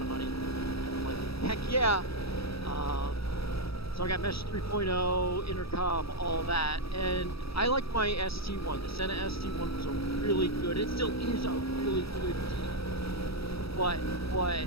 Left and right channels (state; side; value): late; right; 0.77 ms